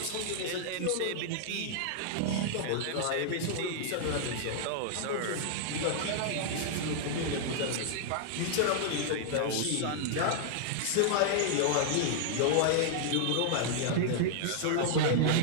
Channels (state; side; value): different; both; correlation -0.01